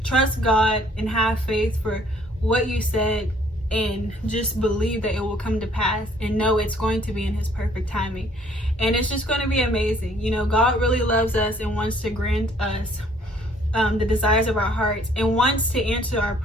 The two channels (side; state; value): both; normal; correlation 0.60